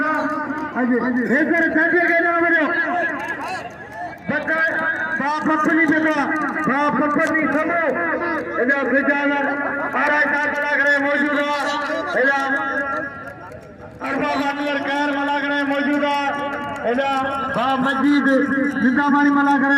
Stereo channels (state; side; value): identical; both; correlation 1.00